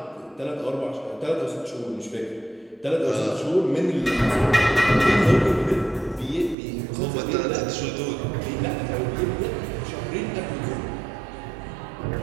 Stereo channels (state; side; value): drops out; left; at 6.6 s